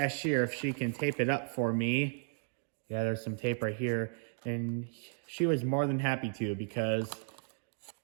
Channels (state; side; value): silent; left; digital silence